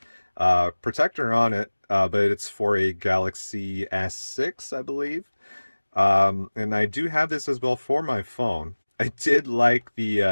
protector on it, but it's for a Galaxy S6, I believe. And I do have this as well for my phone. I did like the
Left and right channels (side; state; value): both; inverted; correlation -1.00